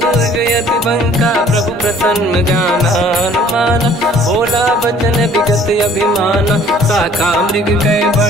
यति बंका प्रभु प्रसन्न जाना हनुमाना बोला बचन विगत अभिमाना शाखा मृग कै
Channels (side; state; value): both; normal; correlation 0.55